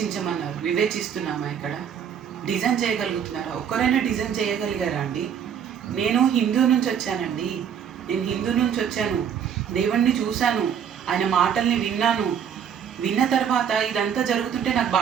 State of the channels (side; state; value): left; quieter; 8.2 dB